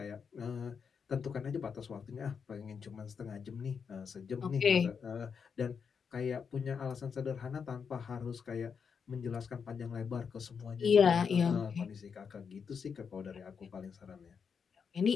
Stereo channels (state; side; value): quieter; right; 6.3 dB